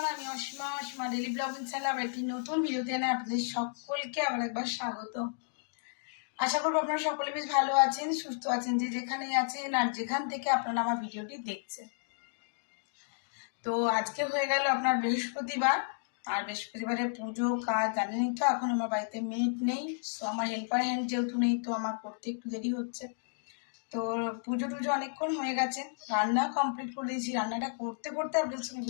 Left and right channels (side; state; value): right; silent; digital silence